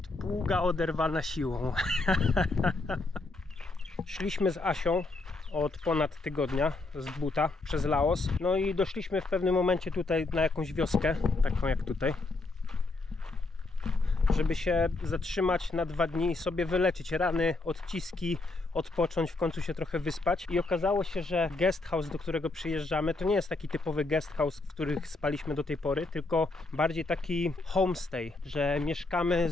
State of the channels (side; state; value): right; quieter; 3.3 dB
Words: pługa oderwana siłą. Szliśmy z Asią od ponad tygodnia z buta przez Laos. No i doszliśmy w pewnym momencie tutaj na jakąś wioskę, taką jak tutaj, żeby się zatrzymać na 2 dni i sobie wyleczyć rany, odciski, odpocząć, w końcu się trochę wyspać. I okazało się, że guest house, do którego przyjeżdżamy, to nie jest taki typowy guest house, w których spaliśmy do tej pory, tylko bardziej taki homestay, że mieszkamy